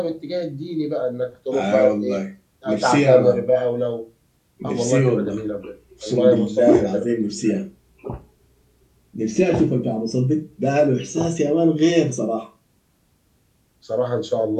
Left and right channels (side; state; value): both; identical; correlation 1.00